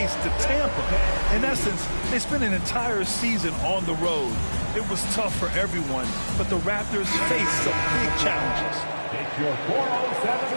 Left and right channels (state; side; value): inverted; both; correlation -1.00